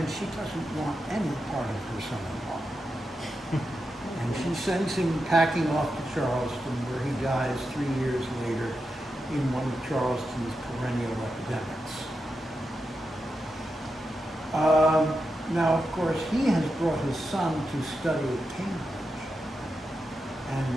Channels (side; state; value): both; normal; correlation 0.88